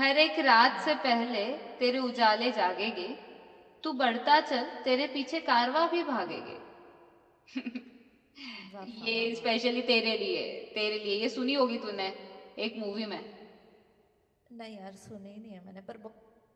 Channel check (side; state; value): both; identical; correlation 1.00